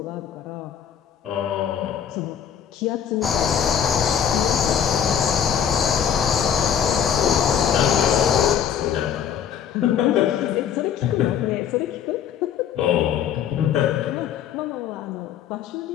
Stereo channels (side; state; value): right; quieter; 8.6 dB